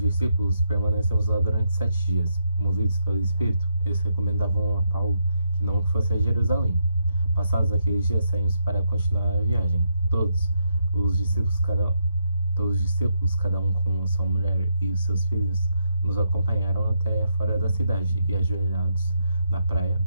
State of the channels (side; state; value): both; inverted; correlation -0.80